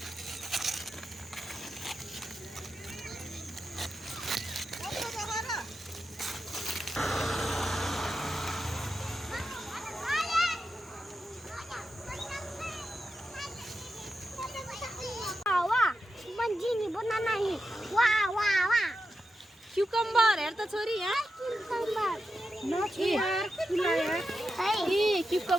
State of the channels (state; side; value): normal; both; correlation 0.89